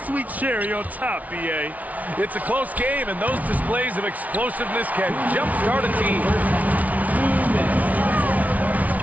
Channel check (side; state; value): left; late; 0.072 ms